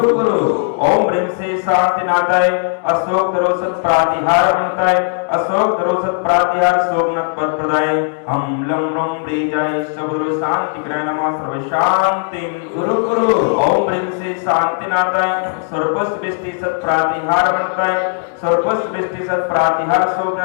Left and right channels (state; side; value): silent; right; digital silence